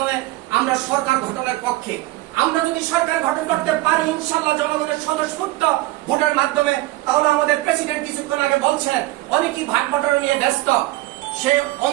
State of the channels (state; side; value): quieter; left; 18.4 dB